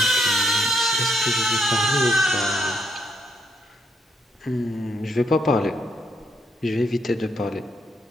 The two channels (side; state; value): both; normal; correlation 0.76